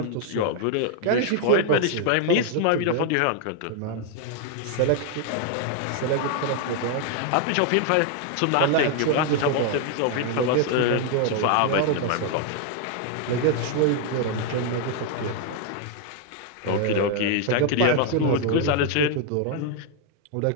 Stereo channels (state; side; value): different; both; correlation 0.00